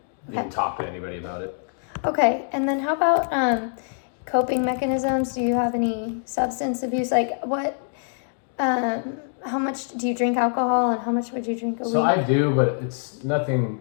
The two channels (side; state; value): right; silent; digital silence